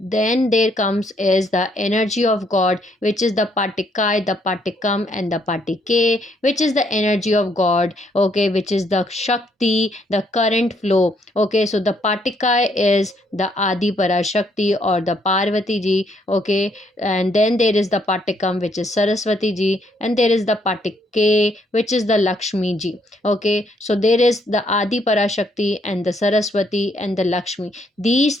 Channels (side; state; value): both; normal; correlation 0.71